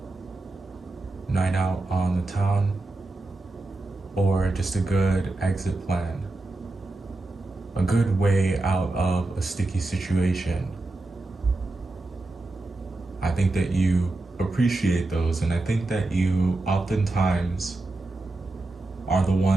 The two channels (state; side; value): quieter; left; 3.0 dB